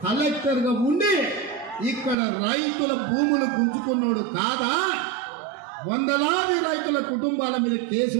కలెక్టర్ గా ఉండి ఇక్కడ రైతుల భూములు గుంజుకున్నాడు కాదా? 100లాది రైతుల కుటుంబాల మీద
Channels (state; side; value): drops out; left; at 2.1 s